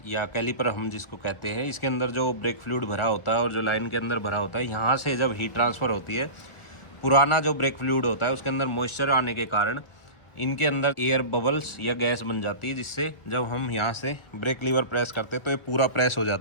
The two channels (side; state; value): right; late; 1.1 ms